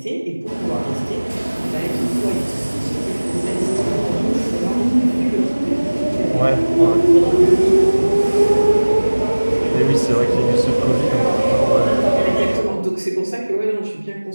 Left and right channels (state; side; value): inverted; both; correlation -1.00